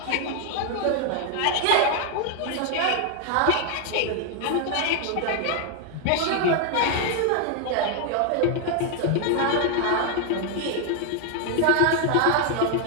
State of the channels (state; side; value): different; both; correlation 0.00